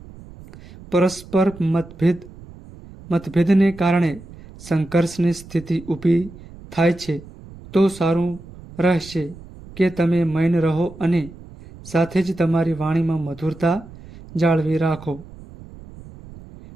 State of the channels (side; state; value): right; noise; rumble, 18 dB below the sound